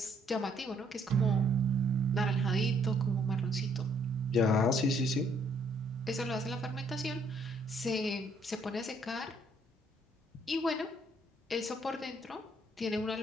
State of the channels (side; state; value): both; normal; correlation 0.67